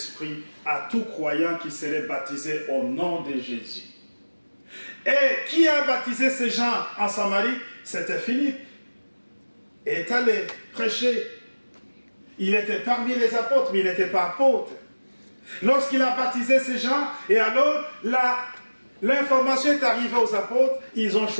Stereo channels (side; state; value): both; inverted; correlation -1.00